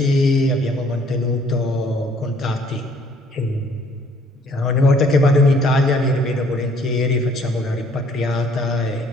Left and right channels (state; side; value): normal; both; correlation 0.61